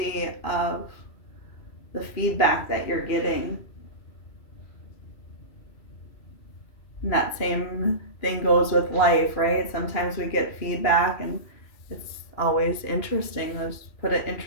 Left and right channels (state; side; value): late; right; 2.8 ms